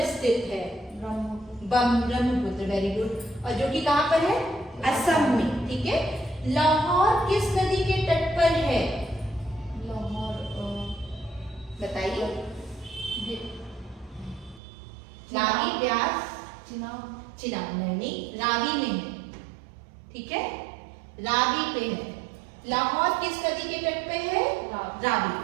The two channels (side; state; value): left; drops out; at 14.6 s